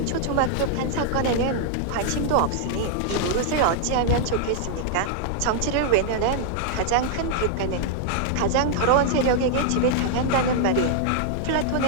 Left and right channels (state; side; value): different; both; correlation 0.00